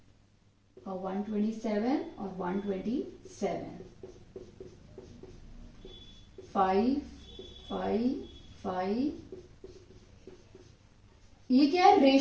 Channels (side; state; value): both; identical; correlation 1.00